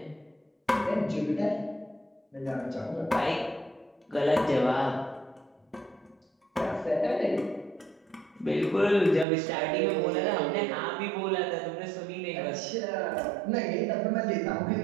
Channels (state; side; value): drops out; left; at 9.2 s